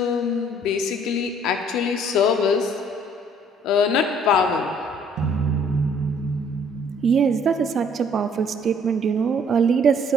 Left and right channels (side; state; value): both; normal; correlation 0.60